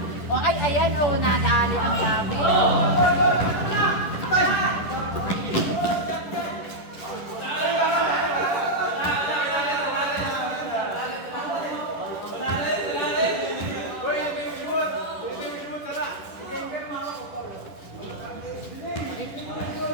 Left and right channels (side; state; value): right; late; 10 ms